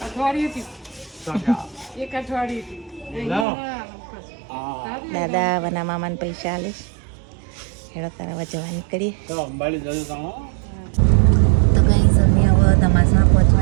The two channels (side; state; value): left; drops out; at 3.5 s